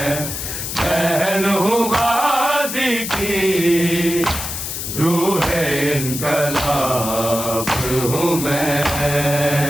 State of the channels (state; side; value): noise; left; hiss, 5 dB below the sound